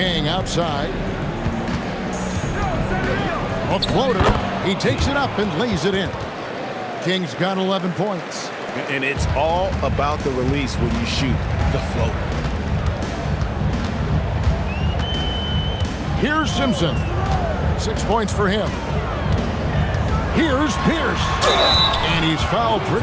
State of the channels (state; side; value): identical; both; correlation 1.00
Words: outside. A floater. He takes it up and lays it in. King's got 11 points. And it's all about the release when you shoot the floater. Here's Simpson. 6 points for him. Here's Pierce. And he's fouled